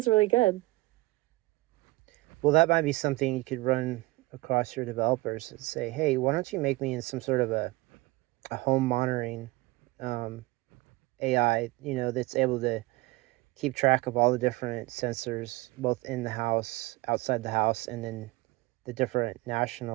really good. Well, that might be something you could run across your developers and say, hey, why don't you make me in some sort of a home monitoring um, AI, that's able to keep track of all the different sensors, both in the house, outside the house, and then the different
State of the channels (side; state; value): left; quieter; 21.9 dB